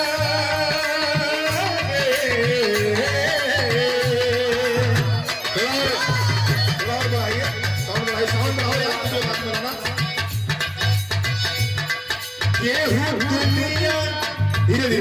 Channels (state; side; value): identical; both; correlation 1.00